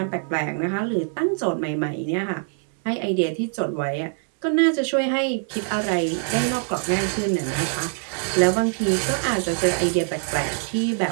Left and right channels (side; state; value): left; silent; 58 dB below the other